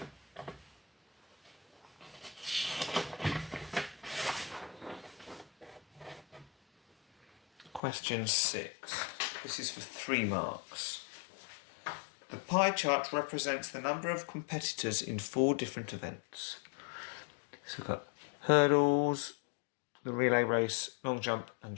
Question 6. This is for 3 marks. The pie chart represents the number of competitors in 4 different events. So we've got hurdles, the relay race, long jump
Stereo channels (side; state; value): right; drops out; at 7.8 s